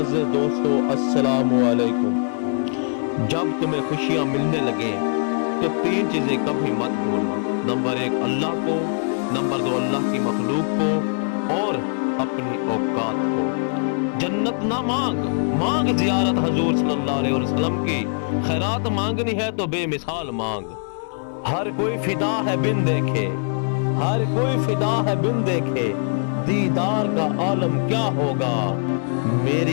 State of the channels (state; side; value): silent; right; digital silence